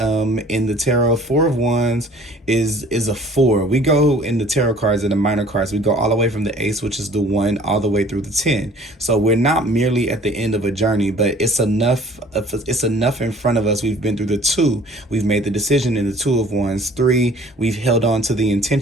the tarot, Four of Wands is a four. We go in the tarot cards and the minor cards, we go all the way from the ace, which is the one, all the way through the 10. So we're not merely at the end of a journey, but it's enough in front of us. We've been through the two, we've made the decision in the Two of Wands. 3, we've held on to the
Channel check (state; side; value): normal; both; correlation 0.51